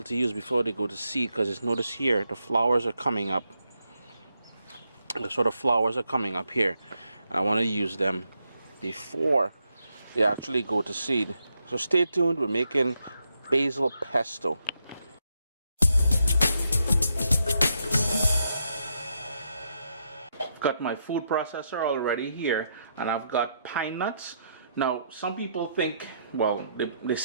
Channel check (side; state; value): both; inverted; correlation -0.80